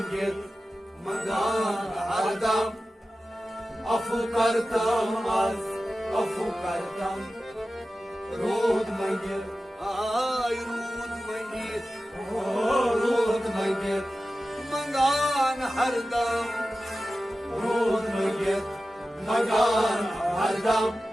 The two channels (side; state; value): both; normal; correlation 0.94